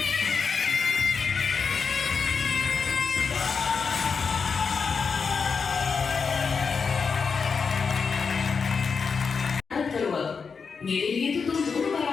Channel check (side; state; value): right; quieter; 5.5 dB